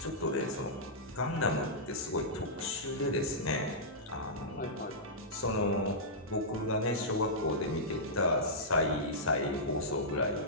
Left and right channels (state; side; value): normal; both; correlation -0.13